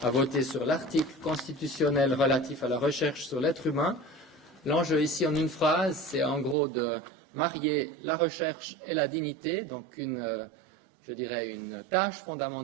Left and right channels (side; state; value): left; drops out; at 6.6 s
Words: à voter sur l'article constitutionnel relatif à la recherche sur l'être humain. L'enjeu ici en une phrase, c'est en gros de marier la recherche et la dignité, donc je dirais une tâche